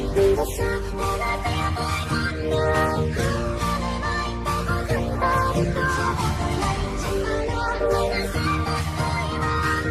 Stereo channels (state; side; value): identical; both; correlation 1.00